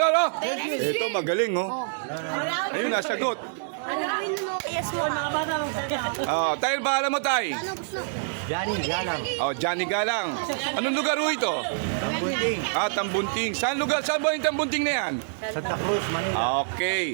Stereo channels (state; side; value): silent; left; digital silence